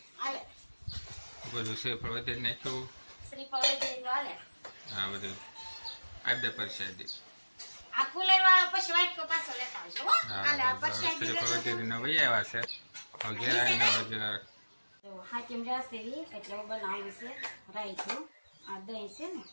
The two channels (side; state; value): both; inverted; correlation -1.00